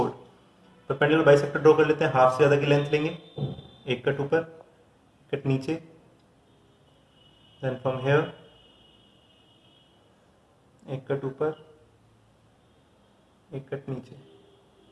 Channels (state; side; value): identical; both; correlation 1.00